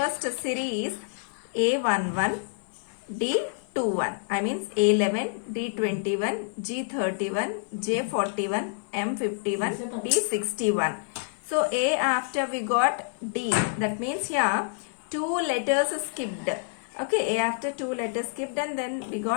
series, A11, D21, I means A11, D21, G31, J41, M51, D61. So A after we got D. That means here two letters skipped. Okay, A after two letters skipped and then we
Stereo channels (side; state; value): right; silent; 56 dB below the other